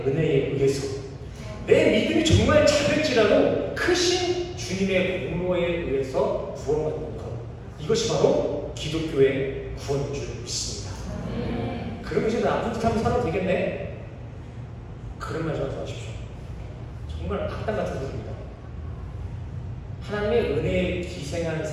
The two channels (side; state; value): both; identical; correlation 1.00